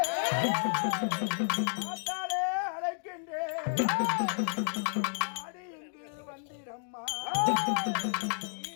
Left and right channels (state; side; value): silent; right; digital silence